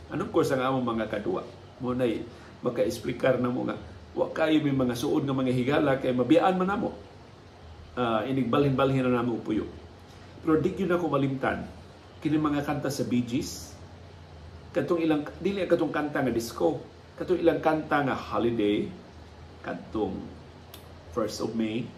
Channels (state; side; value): identical; both; correlation 1.00